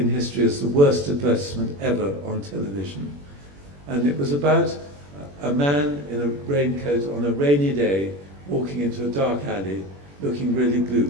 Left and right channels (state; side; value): late; left; 21 ms